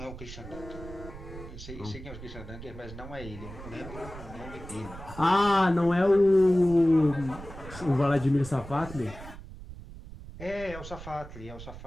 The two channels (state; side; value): noise; right; rumble, 13 dB below the sound